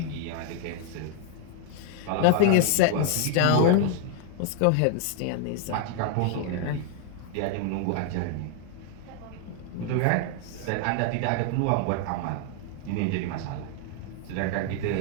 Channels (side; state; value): both; different; correlation 0.00